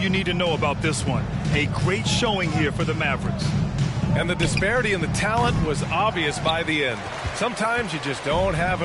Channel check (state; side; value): identical; both; correlation 1.00